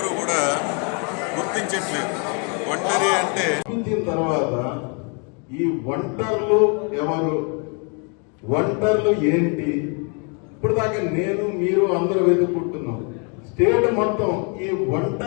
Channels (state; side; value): quieter; right; 36.6 dB